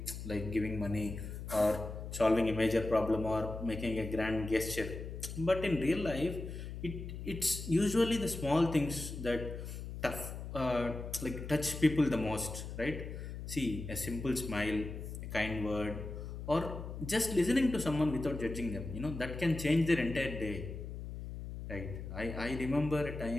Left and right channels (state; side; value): noise; left; hum, 8 dB below the sound